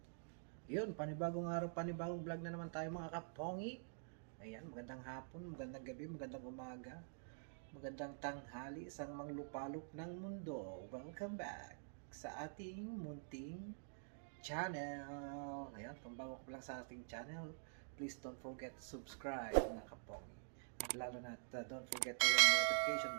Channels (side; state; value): left; silent; digital silence